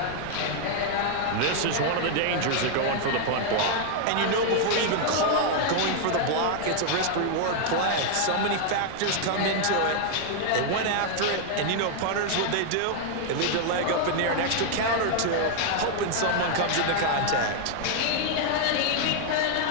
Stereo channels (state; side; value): different; both; correlation 0.00